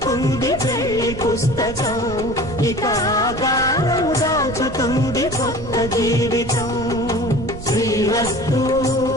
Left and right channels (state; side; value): noise; right; rumble, 11 dB below the sound